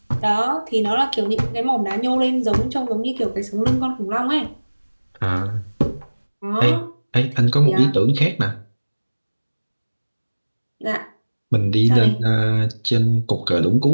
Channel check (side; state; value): both; inverted; correlation -1.00